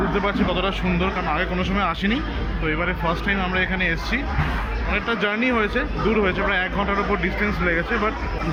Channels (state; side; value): identical; both; correlation 1.00